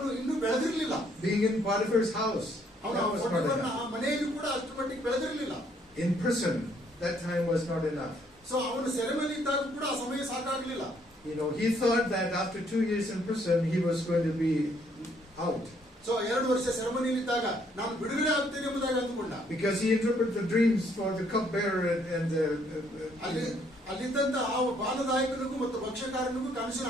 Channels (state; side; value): normal; both; correlation 0.67